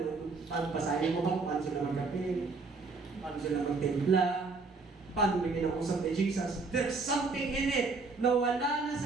basahin mo ba kung paano sila magkape, paano sila magtimpla, paano may kinakusap ni Jesus. There's something in it na wala na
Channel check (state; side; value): quieter; left; 4.0 dB